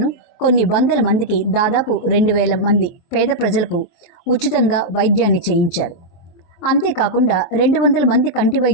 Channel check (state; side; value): late; right; 23 ms